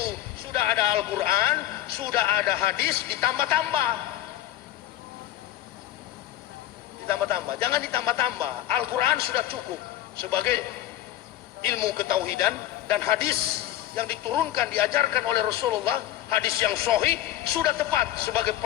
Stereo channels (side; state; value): right; quieter; 13.6 dB